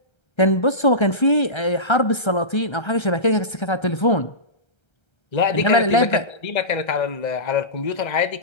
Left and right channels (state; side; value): late; right; 1.3 ms